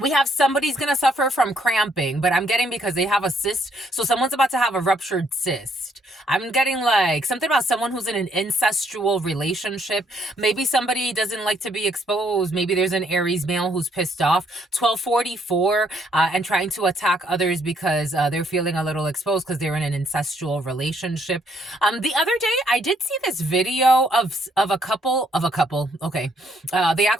We have somebody's going to suffer from cramping, but I'm getting because they have a cyst. So someone's about to have a ruptured cyst. I'm getting like something about someone who's in an incestual relationship. Maybe somebody doesn't like to be exposed. Maybe there's an Aries male who's pissed off. 1244 and trying to attack others because they're feeling a little exposed because they're in an incestual relationship. The other day, I did see this video of a couple. Okay. They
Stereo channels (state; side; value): normal; both; correlation 0.69